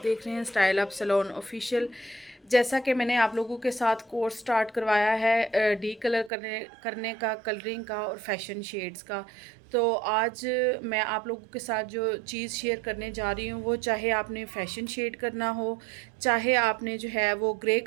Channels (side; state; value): left; drops out; at 6.3 s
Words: देख रहे हैं स्टाइल अप सैलून ऑफिशियल। जैसा कि मैंने आप लोगों के साथ कोर्स स्टार्ट करवाया है डी कलर करने का, कलरिंग का और फैशन शेड्स का, तो आज मैं आप लोगों के साथ जो चीज़ शेयर करने जा रही हूँ वो चाहे आपने फैशन शेड करना हो, चाहे आपने जो है वो ग्रे